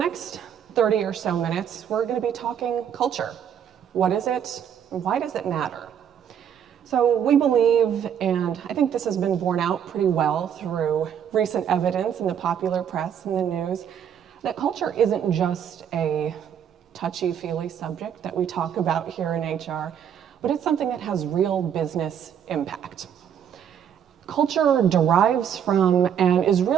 30 or so minutes, we're going to be talking culture. What is it, and why does it matter? So we believe, and I think this has been borne out pretty well through recent evidence in the popular press and the news, that culture isn't just a touchy-feely subject that we talk about here in HR, but it's something that has real business impact. Culture derives from and is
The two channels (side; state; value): left; quieter; 8.7 dB